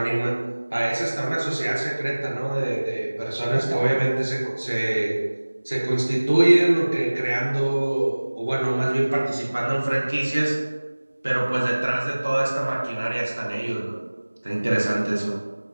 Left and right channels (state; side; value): inverted; both; correlation -1.00